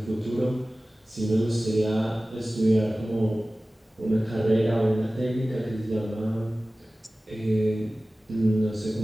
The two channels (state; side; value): normal; both; correlation 0.97